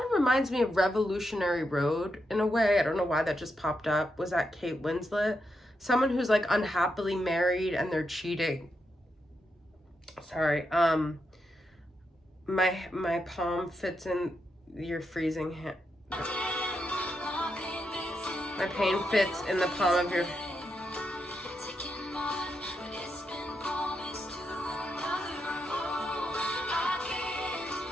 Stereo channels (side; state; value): both; normal; correlation 0.83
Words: of reminds me of Revolutionary Road in a way. I don't know why that just popped up. Was that Kate Winslet? Someone who's like unhappily married and they're cheating. Sorry. My palm fits in your freezing hand. My pain fits in the palm of your.